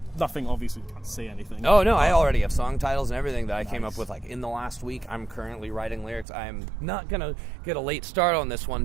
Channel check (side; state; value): left; drops out; at 6.2 s